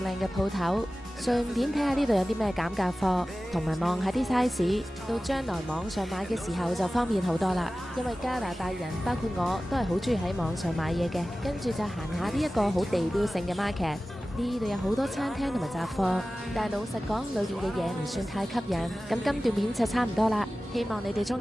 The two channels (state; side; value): normal; both; correlation 0.96